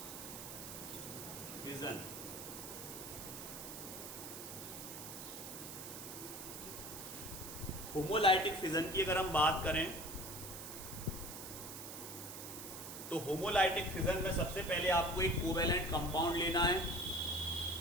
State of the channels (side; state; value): right; noise; hiss, 9 dB below the sound